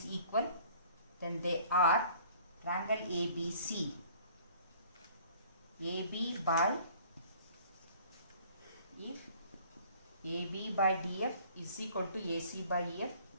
equal, then they are triangle ABC. AB by, if AB by DF is equal to AC by EF,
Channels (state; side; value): inverted; both; correlation -0.53